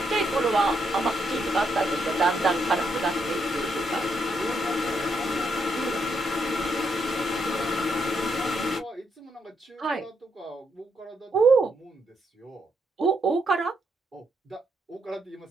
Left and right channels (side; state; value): both; normal; correlation 0.78